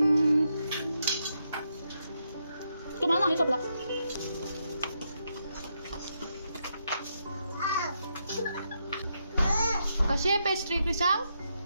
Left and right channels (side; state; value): both; inverted; correlation -0.81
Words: तुम्हाला नाही सोपला. कशी आहे पेस्ट्री क्रिशांक?